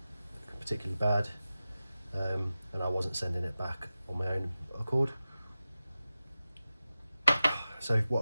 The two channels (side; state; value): both; inverted; correlation -0.94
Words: particularly bad, and I wasn't sending it back on my own accord. So what